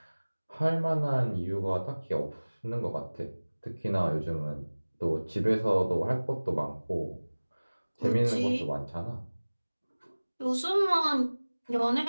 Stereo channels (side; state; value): both; inverted; correlation -1.00